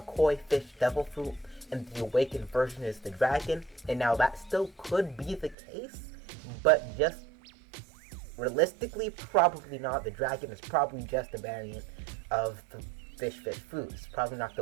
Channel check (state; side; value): drops out; left; at 5.6 s